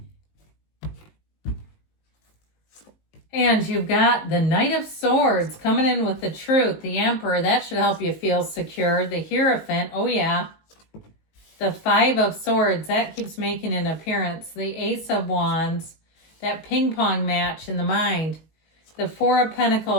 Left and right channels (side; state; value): right; late; 19 ms